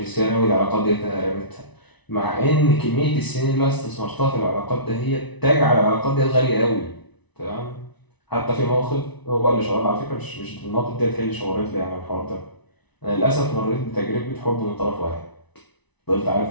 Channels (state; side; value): late; right; 1.0 ms